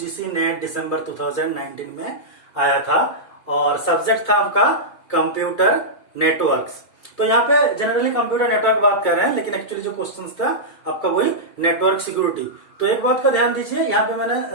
नेट दिसंबर 2019 में आया था और सब्जेक्ट था आपका कंप्यूटर नेटवर्क्स। तो यहाँ पे जनरली कंप्यूटर नेटवर्क बात कर रहे हैं, लेकिन एक्चुअली जो क्वेश्चंस था आपका वही नेटवर्क सिक्योरिटी। तो एक बात का ध्यान दीजिए, यहाँ पे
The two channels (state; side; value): late; right; 2.3 ms